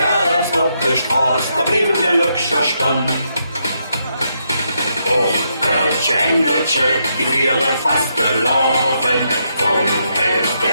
auf der Straße, da blieben die Lückscher stehen. Och, Kölsche Engelchen, die wäre fast gelaufen. Vom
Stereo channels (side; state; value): both; inverted; correlation -0.78